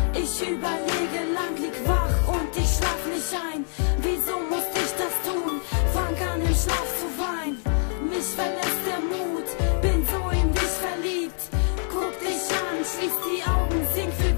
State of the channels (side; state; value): right; silent; 56 dB below the other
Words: Ich überlege lang, lieg wach und ich schlaf nicht ein. Wieso musste ich das tun? Fang an im Schlaf zu weinen. Mich verlässt der Mut, bin so in dich verliebt. Guck dich an, schließ die Augen, sing für